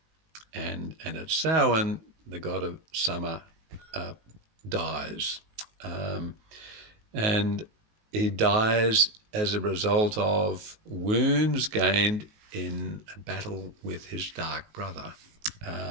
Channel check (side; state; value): left; late; 19 ms